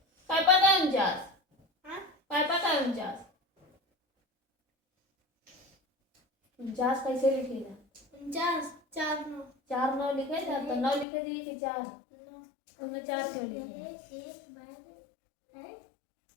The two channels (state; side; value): drops out; right; at 11.1 s